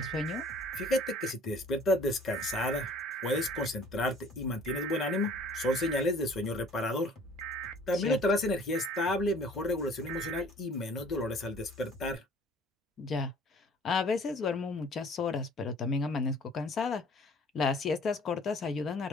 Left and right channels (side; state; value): both; normal; correlation 0.52